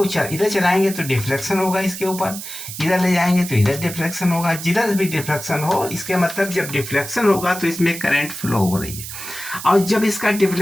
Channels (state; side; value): noise; right; hiss, 9 dB below the sound